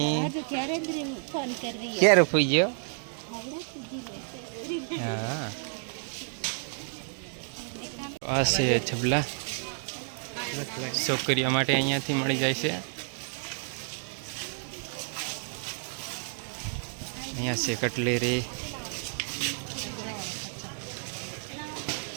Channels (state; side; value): silent; left; 57 dB below the other